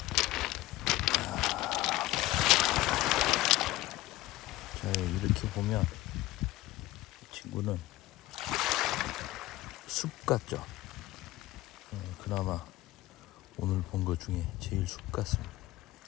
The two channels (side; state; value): right; quieter; 17.0 dB